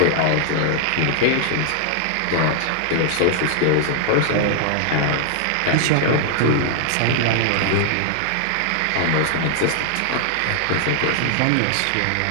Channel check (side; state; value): both; different; correlation 0.00